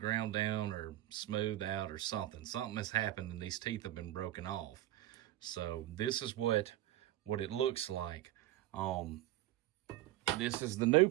down or smoothed out or something. Something has happened and these teeth have been broken off. So this is what it looks like. This is the new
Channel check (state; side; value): quieter; left; 14.7 dB